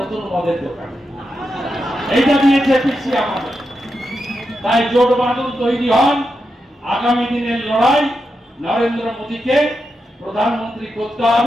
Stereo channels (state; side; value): normal; both; correlation 0.87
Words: মদের দোকান, এইটা দিয়েছে পিসি আমাদের। তাই জোট বাঁধন তৈরি হন, আগামী দিনের লড়াই নরেন্দ্র মোদীকে প্রধানমন্ত্রী করতে